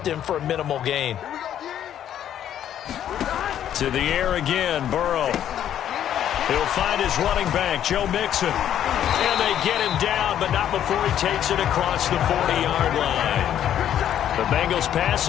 him for a minimal gain. To the air again, Burrow. He'll find his running back, Joe Mixon. And they get him down, but not before he takes it across the 40-yard line. The Bengals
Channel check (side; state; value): right; quieter; 10.5 dB